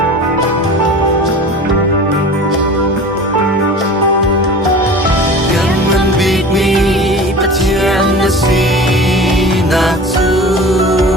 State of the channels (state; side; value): normal; both; correlation 0.38